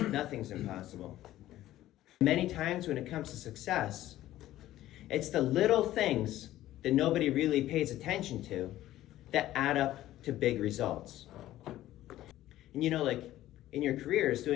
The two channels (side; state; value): right; quieter; 14.3 dB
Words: Nothing's impossible. Many times when it comes to success, it's the little things that nobody really pays attention to that add up to big results. And you know, like in your careers,